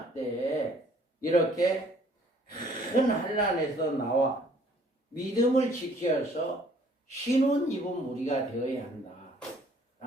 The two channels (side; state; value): both; normal; correlation 0.59